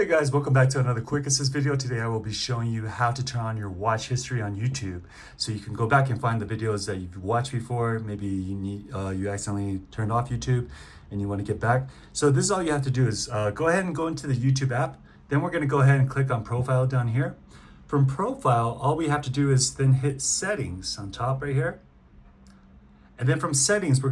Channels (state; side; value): identical; both; correlation 1.00